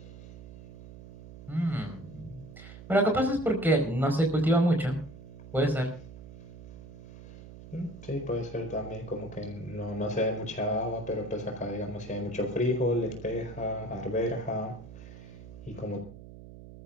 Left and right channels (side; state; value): right; noise; hum, 15 dB below the sound